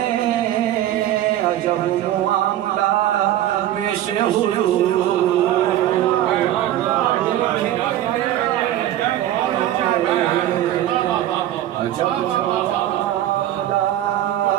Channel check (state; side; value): quieter; left; 12.9 dB